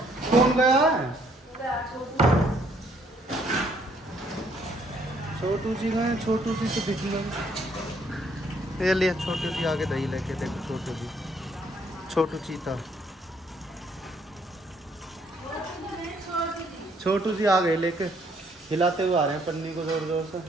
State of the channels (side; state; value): both; normal; correlation 0.67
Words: कौन गया है? छोटू जी गए, छोटू जी से दिख गए। ये लिए छोटू जी आगे दही लेके, देखो छोटू जी, छोटू चीता, छोटू जी आ गए लेके, हिलाते हुए आ रहे हैं पन्नी को जोर जोर से,